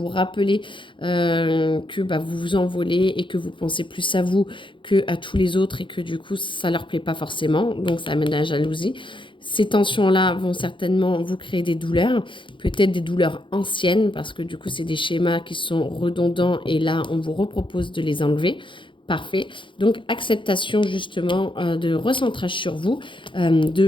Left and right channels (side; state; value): right; late; 0.24 ms